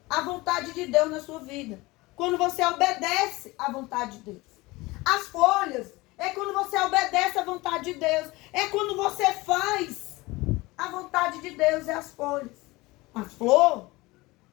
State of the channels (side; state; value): right; quieter; 21.6 dB